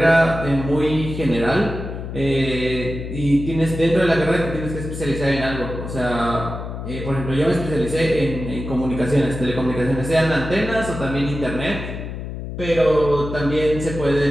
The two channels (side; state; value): left; noise; hum, 7 dB below the sound